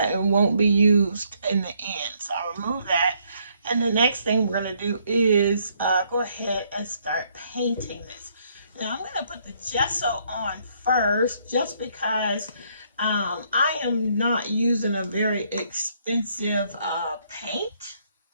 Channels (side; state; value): both; inverted; correlation -0.69